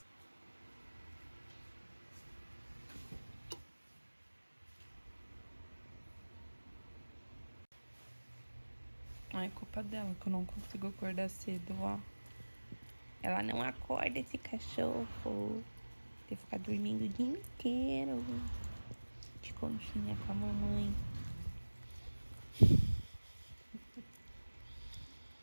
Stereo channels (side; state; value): both; inverted; correlation -1.00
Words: Não é culpa dela que eu não consigo acordar cedo, ó. Ela não acorda, esse cachorro. Tem que ficar dormindo o dia inteiro. De conchinha com a mamãe.